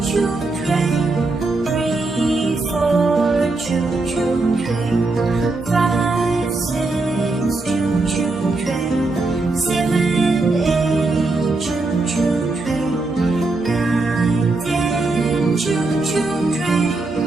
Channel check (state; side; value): quieter; left; 3.3 dB